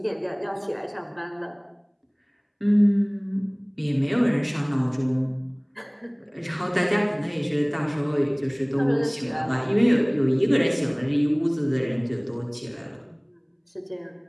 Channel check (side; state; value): both; identical; correlation 1.00